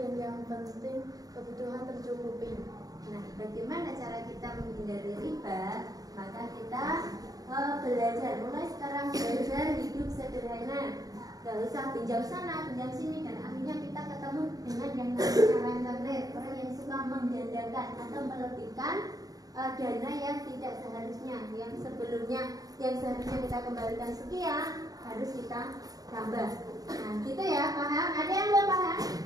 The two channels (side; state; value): left; late; 0.18 ms